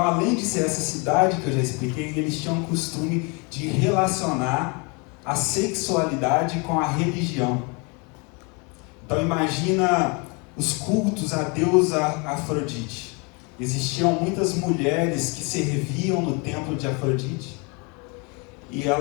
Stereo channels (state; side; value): quieter; right; 31.4 dB